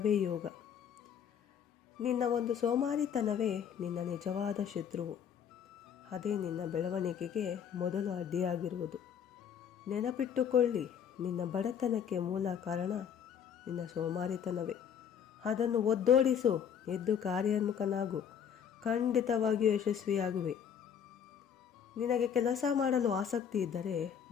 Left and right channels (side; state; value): right; quieter; 8.1 dB